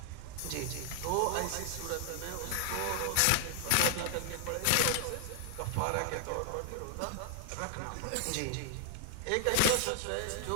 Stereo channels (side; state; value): both; different; correlation 0.00